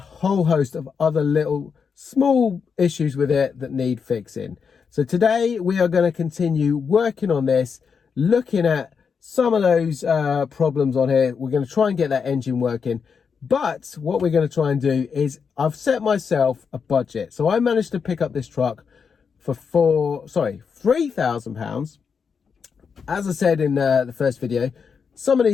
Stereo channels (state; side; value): quieter; right; 6.1 dB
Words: host of other little small issues with it that need fixing. So today we are going to continue working on this, looking at some of those problems on here. We're going to try and get that engine working. But what we're going to try and do is I've set myself a budget. So I managed to pick up this truck for £3,000. As I said in the first video, some of